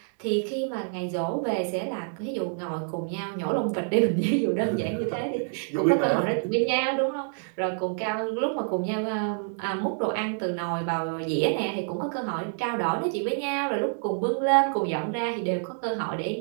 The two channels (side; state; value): left; silent; digital silence